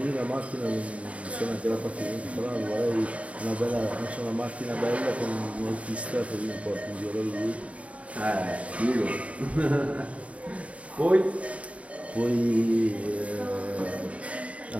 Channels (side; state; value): left; late; 0.065 ms